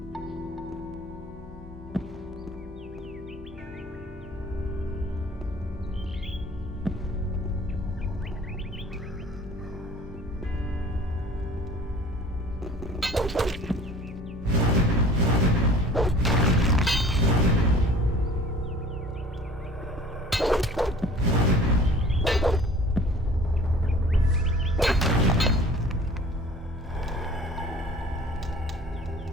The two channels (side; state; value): both; normal; correlation 0.47